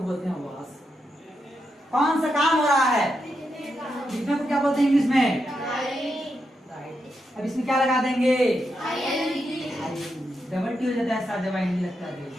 बोलते हैं वाज। कौन सा काम हो रहा है, लिखने को क्या बोलते हैं इंग्लिश में, राइट। अब इसमें क्या लगा देंगे, डबल टी हो जाता है साथ जब आईएनजी लगता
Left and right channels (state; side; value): normal; both; correlation 0.84